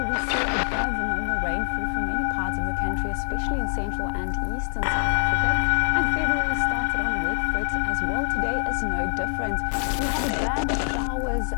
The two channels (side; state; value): right; silent; 62 dB below the other